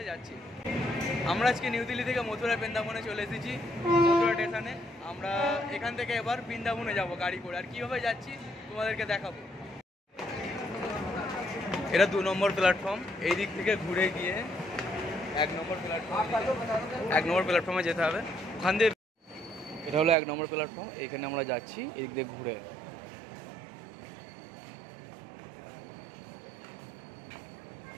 যাচ্ছি। আমরা আজকে নিউ দিল্লি থেকে মথুরা বৃন্দাবনে চলে এসেছি, মথুরা স্টেশনে। আমরা এখান থেকে এবার বৃন্দাবনে যাব গাড়ি করে, আর কীভাবে যাচ্ছি তোমাদেরকে দেখাবো। এটা 2 নম্বর প্ল্যাটফর্ম, এই দিক থেকে ঘুরে গিয়ে 1 নম্বর প্ল্যাটফর্মে যেতে হবে। ওখান দিয়ে এটা হলো 1 নম্বর প্ল্যাটফর্ম, এখানে আমরা যাচ্ছি এই দিক দিয়ে ঘুরে।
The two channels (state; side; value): drops out; left; at 20.2 s